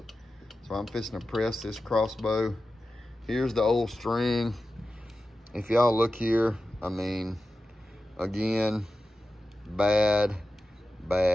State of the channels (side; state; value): both; normal; correlation 0.93